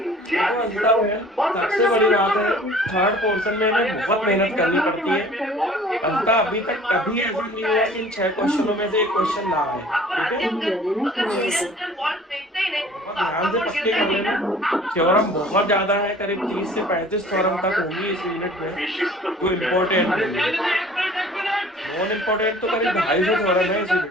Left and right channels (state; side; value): normal; both; correlation 0.49